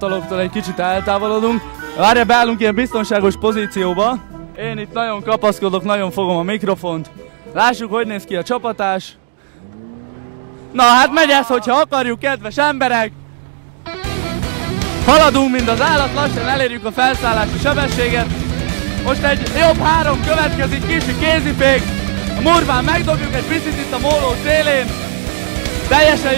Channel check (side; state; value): left; silent; digital silence